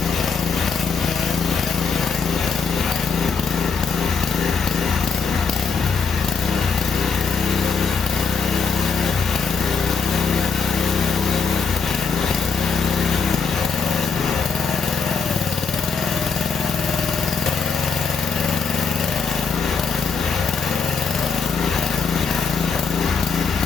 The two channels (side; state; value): right; quieter; 5.4 dB